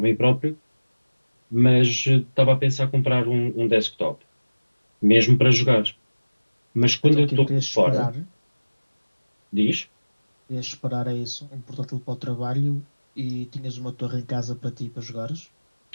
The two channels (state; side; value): inverted; both; correlation -1.00